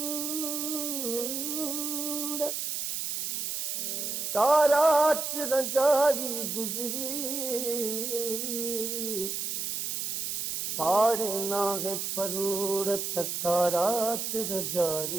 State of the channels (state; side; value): noise; right; hiss, 2 dB below the sound